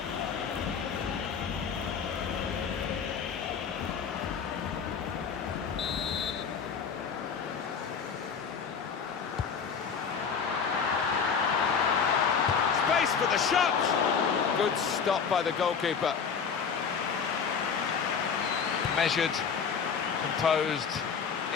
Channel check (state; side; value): quieter; right; 6.4 dB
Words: Space for the shot! Good stop by the goalkeeper. Measured, composed,